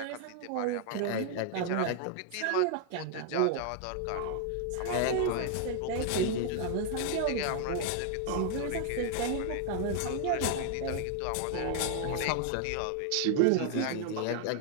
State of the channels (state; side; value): different; both; correlation 0.00